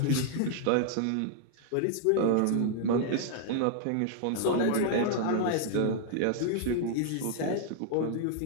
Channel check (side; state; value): both; different; correlation -0.01